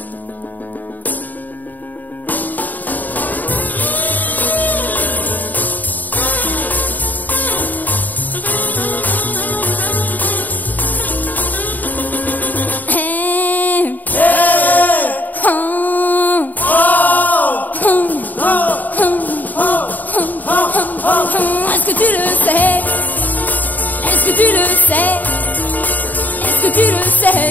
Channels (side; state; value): right; late; 0.084 ms